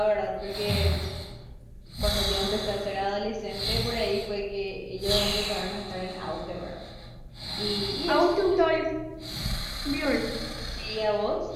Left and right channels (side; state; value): both; identical; correlation 1.00